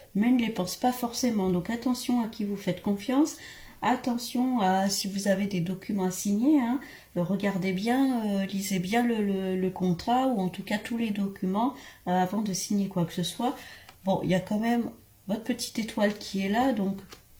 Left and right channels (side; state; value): both; identical; correlation 1.00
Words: mais ne les pensent pas forcément. Donc attention à qui vous faites confiance, attention à si vous avez des documents à signer, hein, regardez bien, lisez bien le contrat, ou en tout cas tous les documents avant de signer quoi que ce soit. Bon, il y a quand même votre petite étoile qui est là, donc